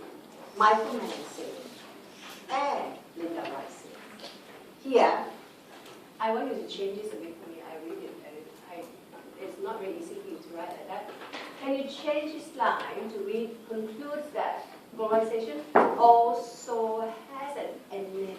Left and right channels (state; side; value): identical; both; correlation 1.00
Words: Michael Mann said it. And Linda Rice said it. Here, I want you to change this a bit for me. I read it. It's not very easy for you to write like that. Can you change this line to read, concludes that globalization also has an